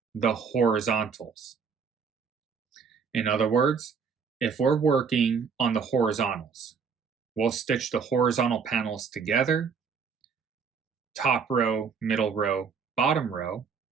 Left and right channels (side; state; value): left; quieter; 6.0 dB